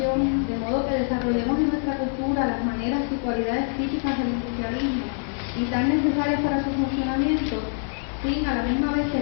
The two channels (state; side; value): silent; right; 59 dB below the other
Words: de modo que desarrollemos en nuestra cultura las maneras y cualidades típicas del industrialismo y tan necesarias para su funcionamiento, sin a la misma vez